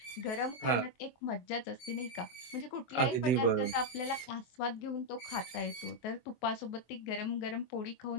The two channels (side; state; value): right; late; 23 ms